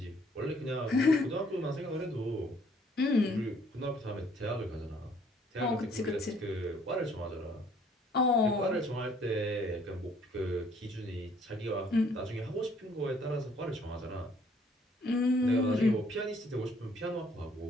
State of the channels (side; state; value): both; normal; correlation 0.62